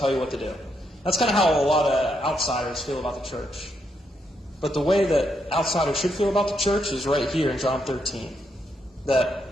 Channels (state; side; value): normal; both; correlation 0.79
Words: you what to do. That's kind of how a lot of outsiders feel about the church. But the way that outsiders should feel about the church is right here in John 13.